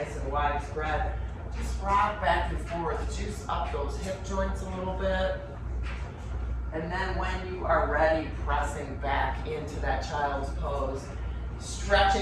and wide spread. Just rock back and forth, juice up those hip joints a little bit. And then when you are ready, pressing back into that child's pose.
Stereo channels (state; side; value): identical; both; correlation 1.00